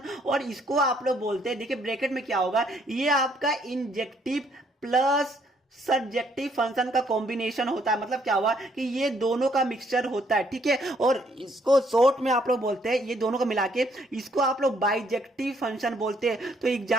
और इसको आप लोग बोलते हैं, देखिए ब्रैकेट में क्या होगा, ये आपका इंजेक्टिव प्लस सब्जेक्टिव फंक्शन का कॉम्बिनेशन होता है। मतलब क्या हुआ कि ये दोनों का मिक्सचर होता है। ठीक है, और इसको शॉर्ट में आप लोग बोलते हैं, ये दोनों को मिला के इसको आप लोग बाइजेक्टिव फंक्शन बोलते हैं। तो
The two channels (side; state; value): both; normal; correlation 0.68